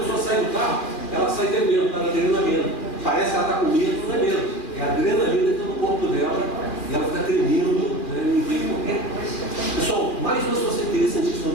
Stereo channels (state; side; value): late; right; 2.4 ms